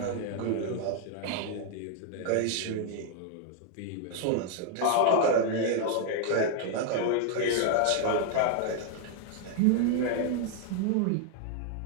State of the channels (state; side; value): different; both; correlation 0.00